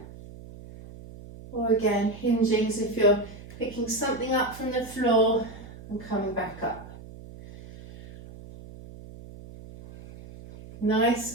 Or again, hinging as if you're picking something up from the floor and coming back up.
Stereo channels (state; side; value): noise; right; hum, 16 dB below the sound